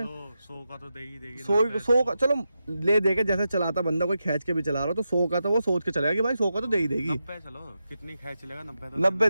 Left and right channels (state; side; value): inverted; both; correlation -0.89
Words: 100 का तो देगी 100 का चलो ले देके, जैसे चलाता बंदा कोई खींच के भी चला रहा हो तो 100 का तो वो सोच के चलेगा कि भाई 100 का तो दे ही देगी। 90 चलो कितनी खींच लेगा, 90